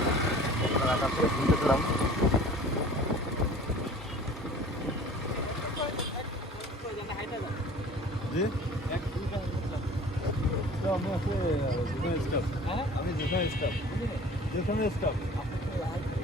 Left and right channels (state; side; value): normal; both; correlation 0.45